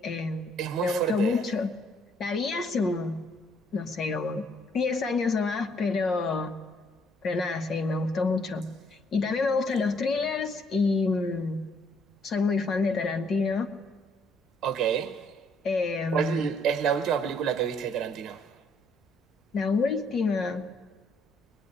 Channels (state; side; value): normal; both; correlation 0.67